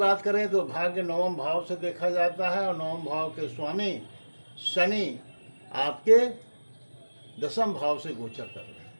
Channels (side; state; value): both; inverted; correlation -1.00